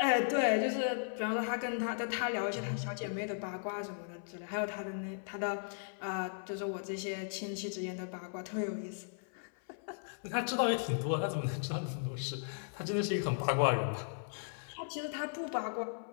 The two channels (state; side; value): silent; right; 53 dB below the other